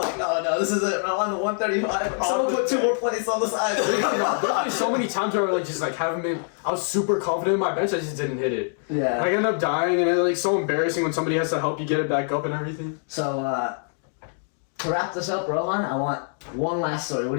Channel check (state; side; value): silent; right; digital silence